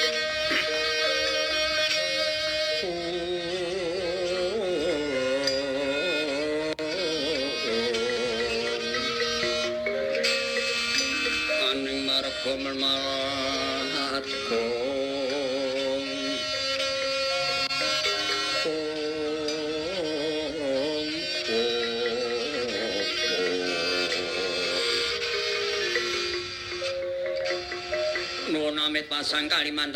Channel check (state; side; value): identical; both; correlation 1.00